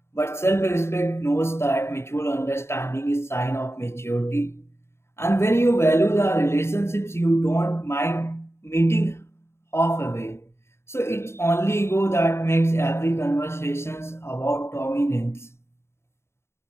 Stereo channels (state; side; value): late; right; 0.12 ms